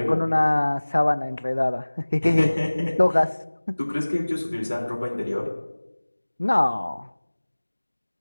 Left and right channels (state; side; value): inverted; both; correlation -1.00